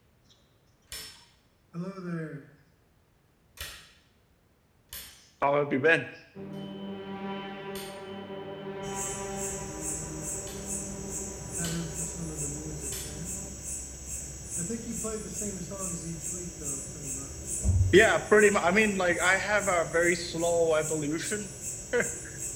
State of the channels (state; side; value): identical; both; correlation 1.00